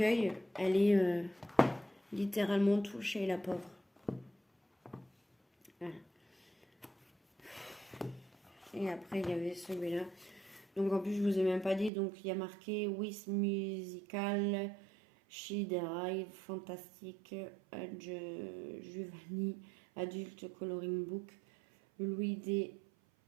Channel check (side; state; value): left; drops out; at 11.9 s